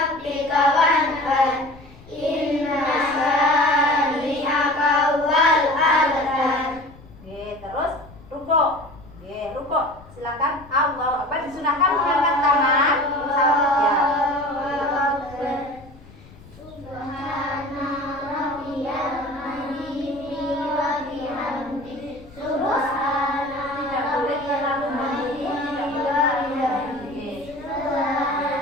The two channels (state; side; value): noise; left; rumble, 21 dB below the sound